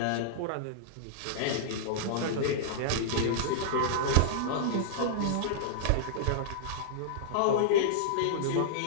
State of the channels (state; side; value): different; both; correlation -0.02